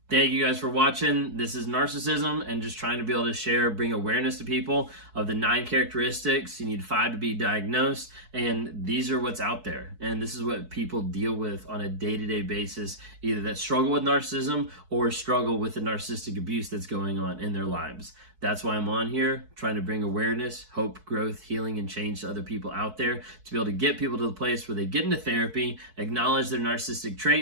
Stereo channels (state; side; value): late; left; 4.6 ms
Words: Thank you guys for watching. This is Narcissism, and just trying to be able to share, bring awareness to people of the 9 characteristics. You need 5 to be diagnosed, and these are what's out there. And this is what people deal with on a day-to-day basis, either that struggle with narcissism or struggle with the narcissistic abuse that's going on in their lives. That's why I'm on here, trying to bring awareness, hope, growth, healing, and change to other people out there, to be able to get people to the place where they get into therapy, acknowledge their narcissistic